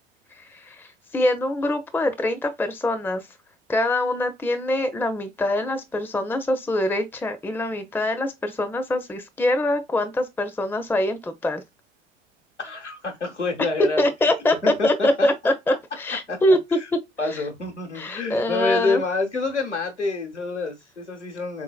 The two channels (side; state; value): both; normal; correlation 0.75